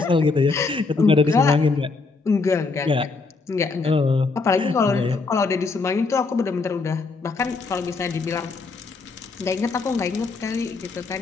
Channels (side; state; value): right; quieter; 4.1 dB